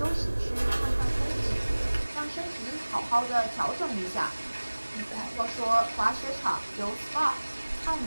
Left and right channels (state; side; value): inverted; both; correlation -1.00